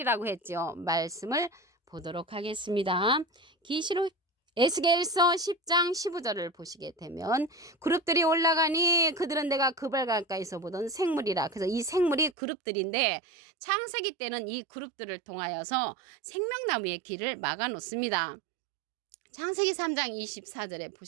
했죠. 말씀을 보도록 하겠습니다. 계시록 에스겔서 10장 15절을 보시게 되면 그룹들이 올라가니 그들은 내가 그발 가까이서 보던 생물이라. 그래서 이 생물이 그룹들인데 창세기 때는 이 그룹들을 통하여서 생명나무의 길을 막아 놓습니다. 창세기 3장 24절에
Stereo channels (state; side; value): drops out; left; at 12.4 s